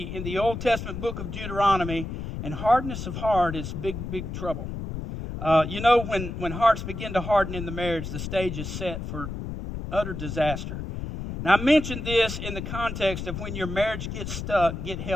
the Old Testament book of Deuteronomy. And hardness of heart is big, big trouble. When hearts begin to harden in the marriage, the stage is set for utter disaster. Now, I mentioned this in the context of when your marriage gets stuck, get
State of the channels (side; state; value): left; noise; rumble, 6 dB below the sound